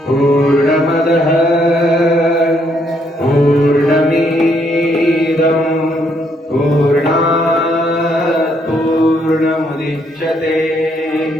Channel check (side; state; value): both; normal; correlation 0.71